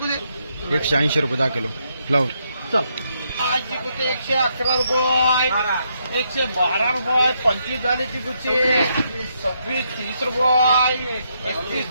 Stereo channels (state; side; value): inverted; both; correlation -0.77